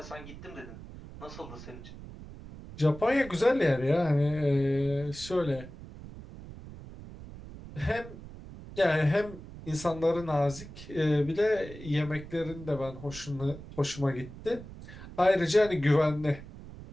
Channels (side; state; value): right; noise; rumble, 14 dB below the sound